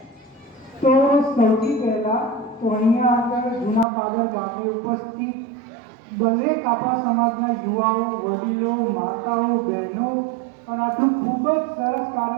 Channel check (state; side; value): drops out; left; at 3.9 s